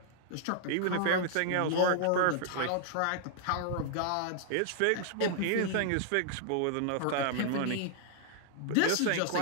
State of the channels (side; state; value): both; different; correlation -0.01